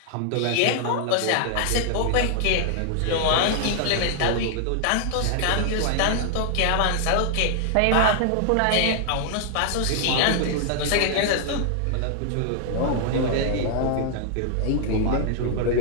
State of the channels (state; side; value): different; both; correlation 0.00